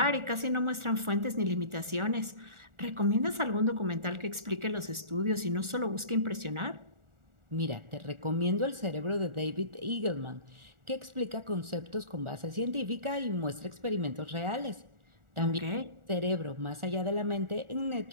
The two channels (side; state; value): left; late; 1.4 ms